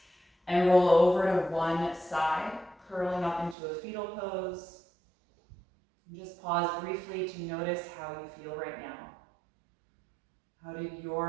and roll over to one side, curling up into a fetal pose. And just pause briefly to notice how you feel right now. How did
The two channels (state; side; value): drops out; left; at 3.6 s